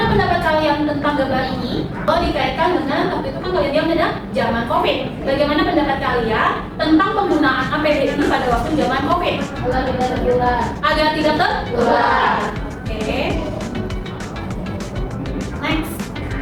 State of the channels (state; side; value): identical; both; correlation 1.00